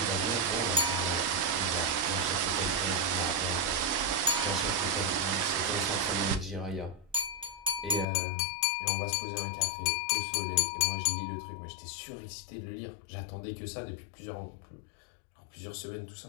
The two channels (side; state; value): right; drops out; at 8.1 s